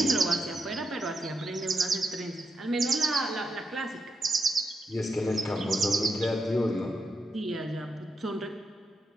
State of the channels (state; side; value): normal; both; correlation 0.84